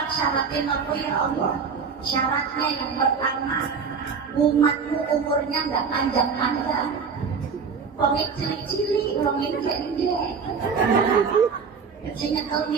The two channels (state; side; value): quieter; left; 5.7 dB